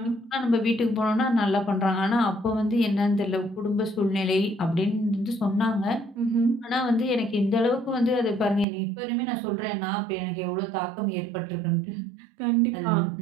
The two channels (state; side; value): drops out; left; at 8.7 s